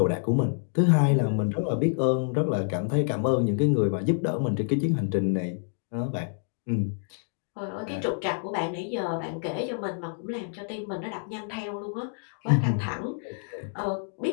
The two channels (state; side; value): silent; right; digital silence